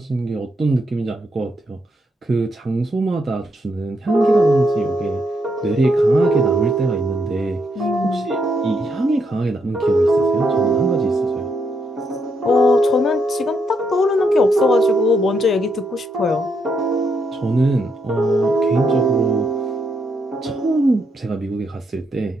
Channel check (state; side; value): normal; both; correlation 0.78